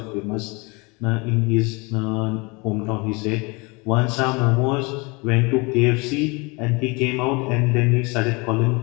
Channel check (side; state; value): right; quieter; 27.7 dB